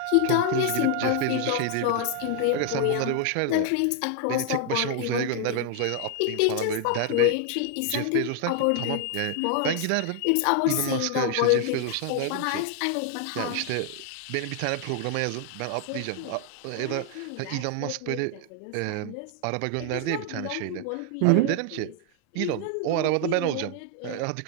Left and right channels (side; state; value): both; different; correlation 0.00